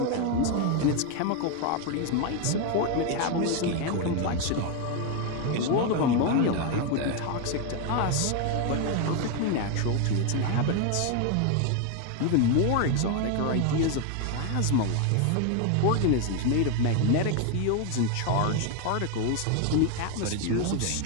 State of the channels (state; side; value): different; both; correlation 0.01